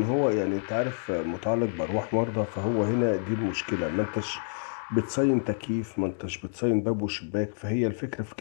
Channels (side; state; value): right; silent; digital silence